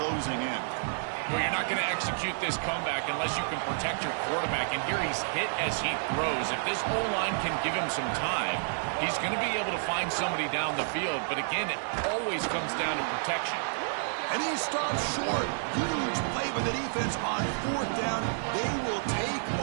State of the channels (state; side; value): silent; left; digital silence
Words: in. Well, you're not going to execute this comeback unless you can protect your quarterback. And here he's hit as he throws. If this O-line can give him some time, he's going to be able to find somebody down the field. But again, it always comes down to protection. And he stops short. Huge play by the defense on 4th down. They will take